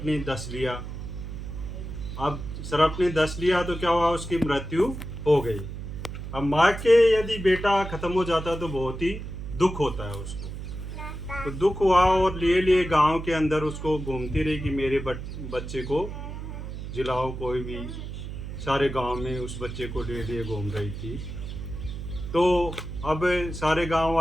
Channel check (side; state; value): right; noise; hum, 8 dB below the sound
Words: ने डस लिया। अब सर्प ने डस लिया तो क्या हुआ, उसकी मृत्यु हो गई। अब माँ के यदि बेटा खत्म हो जाता तो बहुत ही दुख होता है उसको। तो दुख हुआ और लिए लिए गांव के अंदर उसको घूमती रही कि मेरे बच्चे को जिलाओ कोई भी। सारे गांव में उस बच्चे को लिए लिए घूम रही थी। तो अब सारे गांव